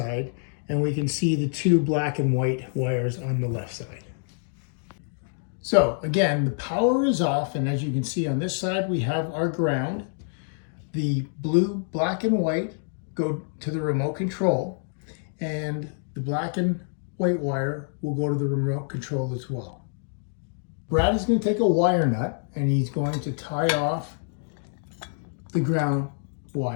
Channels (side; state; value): right; silent; digital silence